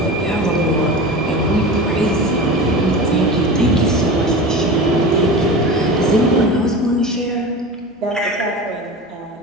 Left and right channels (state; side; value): normal; both; correlation 0.31